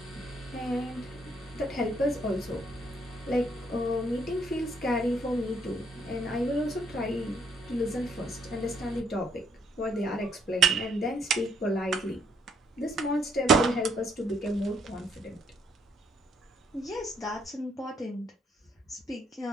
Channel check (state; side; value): normal; both; correlation 0.69